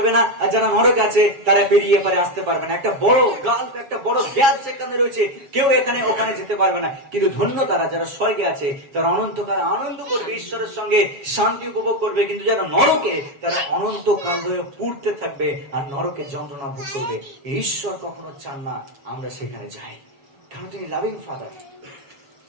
না, আর যারা নরকে আছে তারা পেরিয়ে পারে আসতে পারবে না। একটা বড় গাল্ফ, একটা বড় গ্যাপ সেখানে রয়েছে, কেউ এখানে ওখানে যেতে পারবে না। কিন্তু ধন্য তারা যারা স্বর্গে আছে, তারা অনন্তকাল আনন্দ করবে, ঈশ্বরের সঙ্গে শান্তি উপভোগ করবে। কিন্তু যারা নরকে, তারা অনন্তকাল ধরে পুড়তে থাকবে আর নরকে যন্ত্রণা ভোগ করবে। ঈশ্বর কখনো চান না আমরা সেখানে যাই, কারণ তিনি লাভিং ফাদার,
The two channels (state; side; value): late; left; 7.3 ms